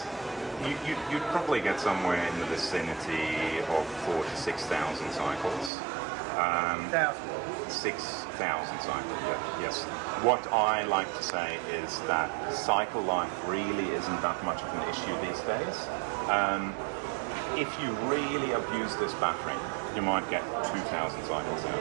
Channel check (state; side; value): drops out; left; at 5.7 s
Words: You'd probably get somewhere in the vicinity of 4,000 to 6,000 cycles. 6,000 cycles, yes. What I like to say is that cycle life really isn't that much of an issue these days. If you really abuse this battery, you might get 2,000 cycles out